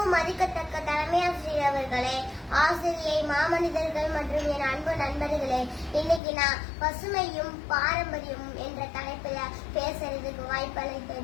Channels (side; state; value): right; drops out; at 6.2 s